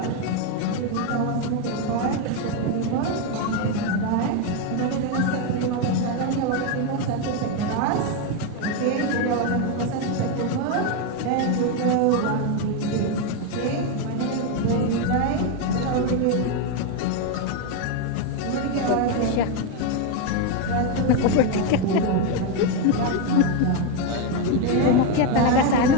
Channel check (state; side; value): different; both; correlation 0.02